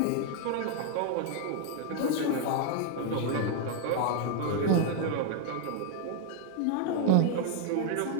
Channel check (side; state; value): both; different; correlation 0.00